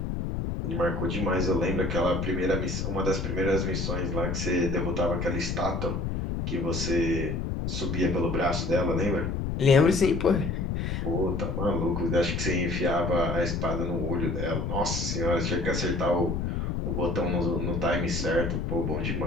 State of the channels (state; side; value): noise; left; rumble, 1 dB below the sound